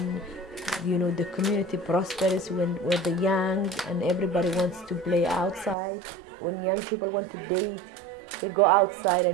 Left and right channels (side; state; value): left; drops out; at 5.8 s